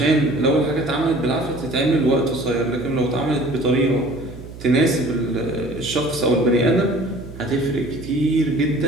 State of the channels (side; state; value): right; noise; hum, 14 dB below the sound